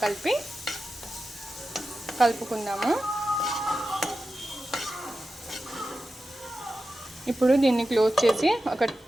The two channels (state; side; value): normal; both; correlation 0.92